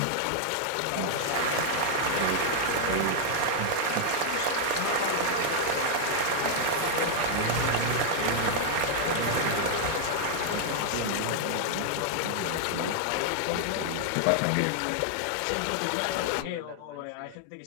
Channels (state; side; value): different; both; correlation 0.00